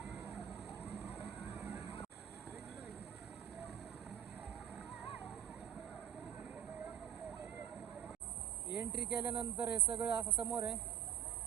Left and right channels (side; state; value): left; quieter; 9.9 dB